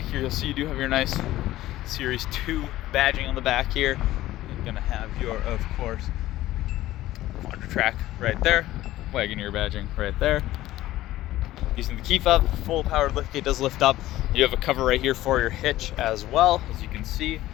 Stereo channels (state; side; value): quieter; right; 15.4 dB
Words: here. You'll see you do have your nice Series 2 badging on the back here. You're gonna have your, of course, Quadra Track right there. Wagoneer badging right there. Using the key fob, full powered liftgate does lift up. You have a cover right here for your hitch as well. As you can see,